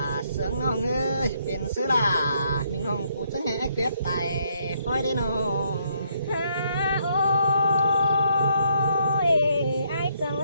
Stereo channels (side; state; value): both; inverted; correlation -0.72